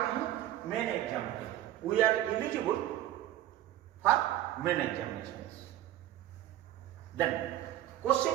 हैं मेन एग्जाम पे। We are eligible for main examination. Then question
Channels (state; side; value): quieter; left; 13.4 dB